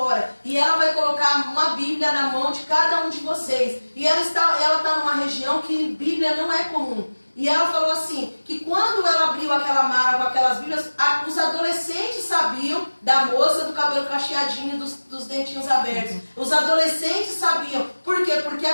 e ela vai colocar uma Bíblia na mão de cada um de vocês. E ela está numa região que Bíblia não é comum. E ela falou assim, que quando ela abriu aquela mala com aquelas Bíblias, os adolescentes sabiam da moça do cabelo cacheadinho, dos dentinhos abertos. Os adolescentes sabiam. Por quê? Porque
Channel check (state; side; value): inverted; both; correlation -1.00